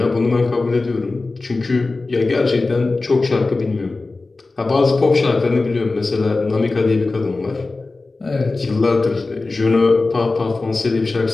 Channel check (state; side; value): quieter; right; 3.5 dB